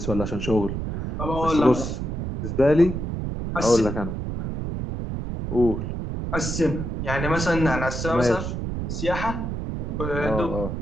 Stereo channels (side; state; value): right; noise; rumble, 4 dB below the sound